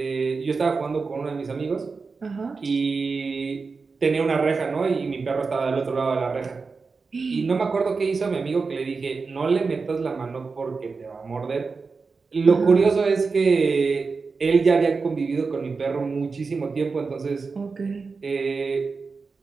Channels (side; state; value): left; quieter; 4.6 dB